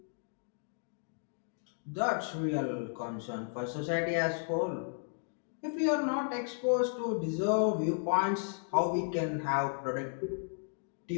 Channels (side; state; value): right; silent; digital silence